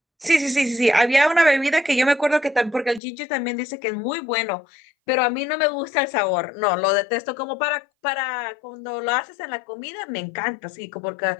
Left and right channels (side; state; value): right; drops out; at 3.0 s